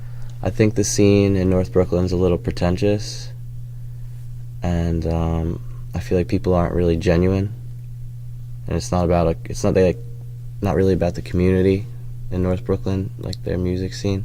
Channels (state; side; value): identical; both; correlation 1.00